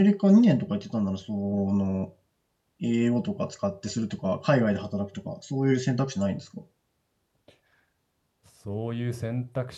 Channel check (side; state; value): both; identical; correlation 1.00